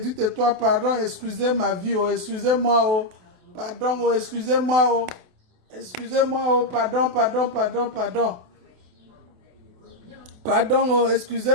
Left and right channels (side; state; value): left; late; 28 ms